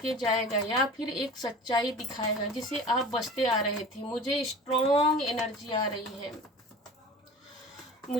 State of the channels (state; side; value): normal; both; correlation 0.39